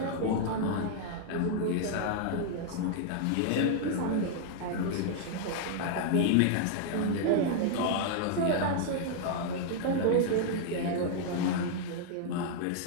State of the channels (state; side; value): different; both; correlation -0.01